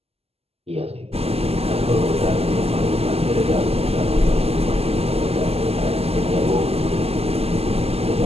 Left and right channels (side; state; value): left; late; 0.29 ms